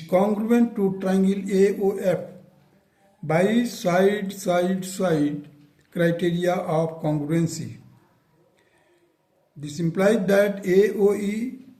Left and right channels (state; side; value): identical; both; correlation 1.00